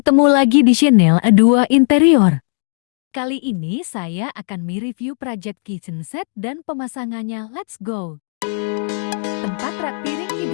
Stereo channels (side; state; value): right; silent; digital silence